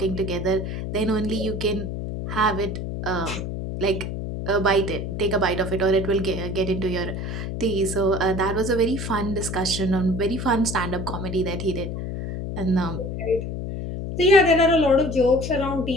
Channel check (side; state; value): left; noise; hum, 5 dB below the sound